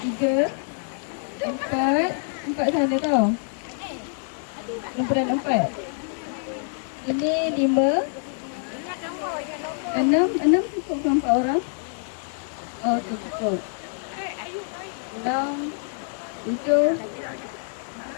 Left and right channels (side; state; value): right; silent; digital silence